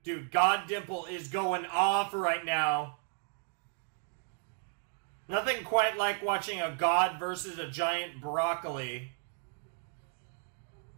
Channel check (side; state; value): left; silent; 55 dB below the other